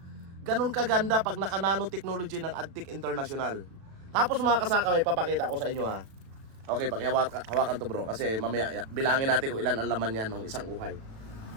Ganun kaganda pag naka-nanotechnology ng Adtech International. Tapos mga kasaka, may papakita ko sa inyo ha. Okay, pakihawakan to bro, kasi mamaya bilangin natin kung ilan ang laman yan ng isang uhay.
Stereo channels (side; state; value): left; late; 36 ms